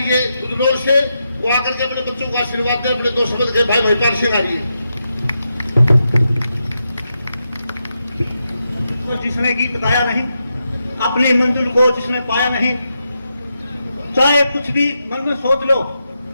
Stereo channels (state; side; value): inverted; both; correlation -0.86